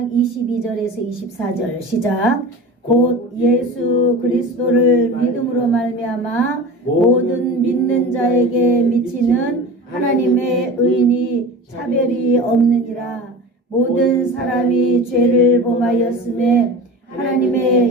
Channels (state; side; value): normal; both; correlation 0.33